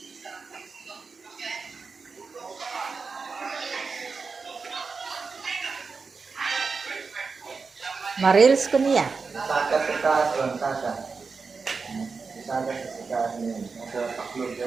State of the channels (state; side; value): quieter; left; 4.8 dB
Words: Marils ko niya. Saka sa taas lang, saka. Saka sa taas niya. Sa paklog